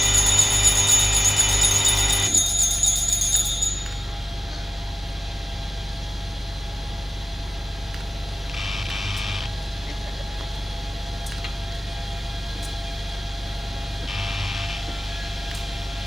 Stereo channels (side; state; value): both; normal; correlation 0.96